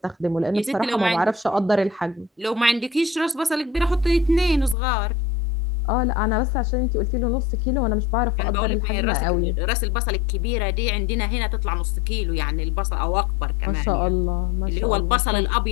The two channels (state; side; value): drops out; right; at 4.8 s